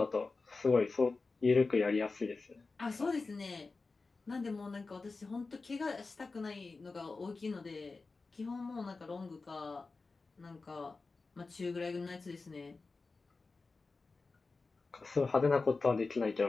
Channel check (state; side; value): quieter; right; 3.9 dB